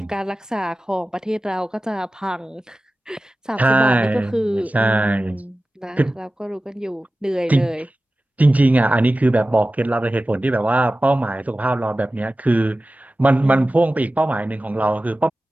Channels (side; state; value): both; normal; correlation 0.95